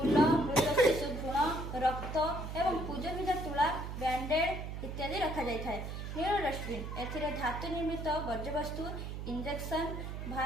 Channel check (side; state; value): right; noise; hum, 6 dB below the sound